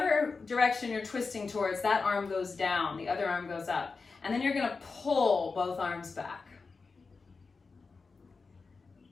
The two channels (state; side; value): quieter; right; 4.4 dB